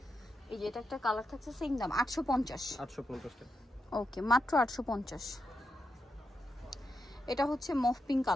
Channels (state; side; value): normal; both; correlation 0.85